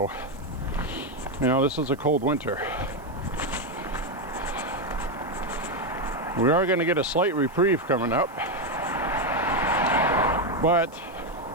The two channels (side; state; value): right; noise; hiss, 28 dB below the sound